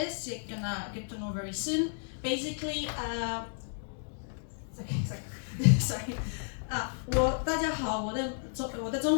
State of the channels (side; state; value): right; silent; digital silence